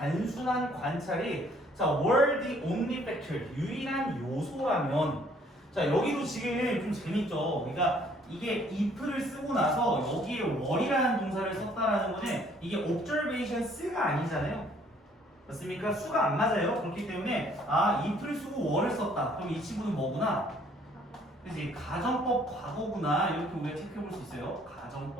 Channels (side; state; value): both; normal; correlation 0.61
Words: 관찰이 자, were the only factor 유일한 요소라면 자, 여기도 지금 좀 재밌죠. 그러니까 이게 if를 쓰고 나서 여기에 were이라는 동사를 썼다라는 거는 이게 observation 쓰가 아니잖아요. 맞습니까? 수가 안 맞아요. 그렇기 때문에 if를 쓰고 were를 썼다. 그럼 이 친구는 뭐구나? 그치? 가정법 과거구나. 이렇게 우리가 체크해 볼 수 있어요.